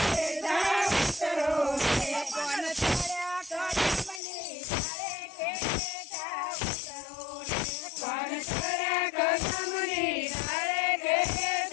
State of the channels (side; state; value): right; drops out; at 4.2 s